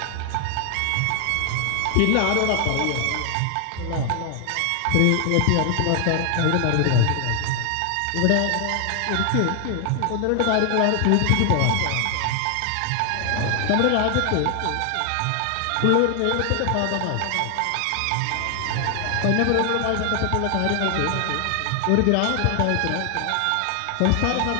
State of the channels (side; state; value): both; different; correlation 0.00